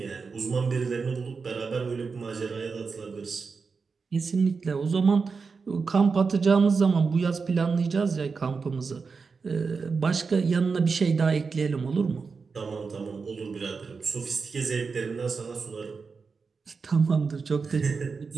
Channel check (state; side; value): quieter; left; 4.9 dB